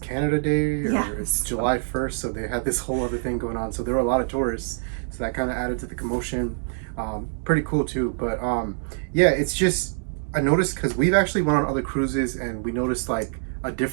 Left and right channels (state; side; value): silent; left; digital silence